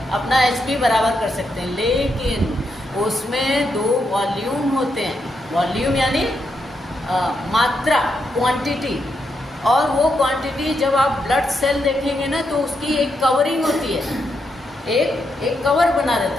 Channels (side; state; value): both; normal; correlation 0.82